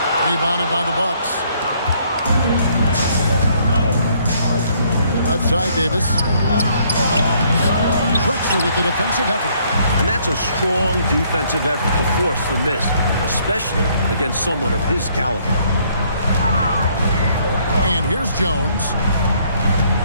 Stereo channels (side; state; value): both; inverted; correlation -0.66